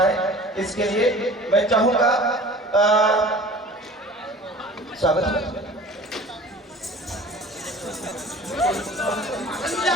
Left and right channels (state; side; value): normal; both; correlation 0.44